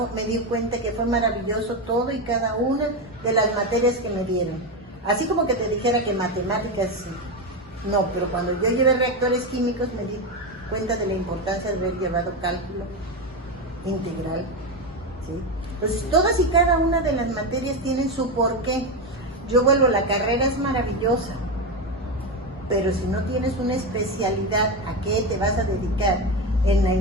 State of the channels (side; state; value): both; normal; correlation 0.13